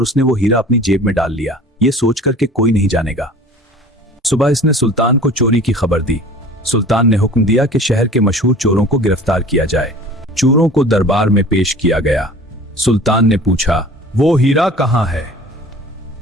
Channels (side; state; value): both; normal; correlation 0.44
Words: उसने वो हीरा अपनी जेब में डाल लिया, ये सोचकर कि कोई नहीं जानेगा। सुबह इसने सुल्तान को चोरी की खबर दी। सुल्तान ने हुक्म दिया कि शहर के मशहूर चोरों को गिरफ्तार किया जाए। चोरों को दरबार में पेश किया गया। सुल्तान ने पूछा, वो हीरा कहाँ है?